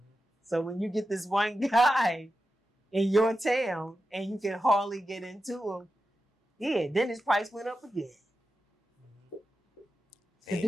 So when you get this one guy in your town and you can hardly get into him, then his price went up again. The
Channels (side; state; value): both; normal; correlation 0.91